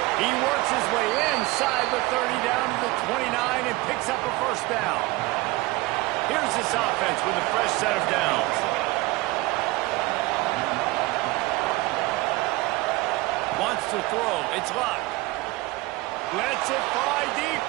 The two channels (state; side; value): quieter; left; 21.1 dB